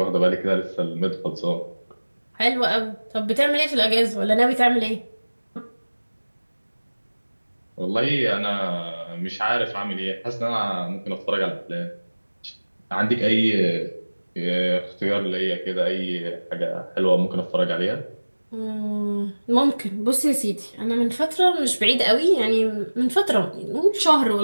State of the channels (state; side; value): inverted; both; correlation -1.00